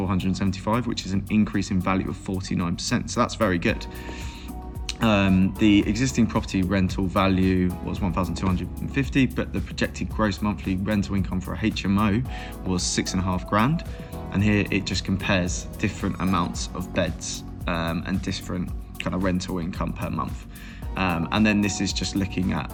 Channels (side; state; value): both; identical; correlation 1.00